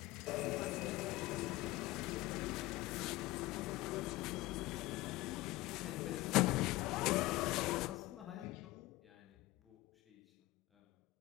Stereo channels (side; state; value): right; quieter; 18.9 dB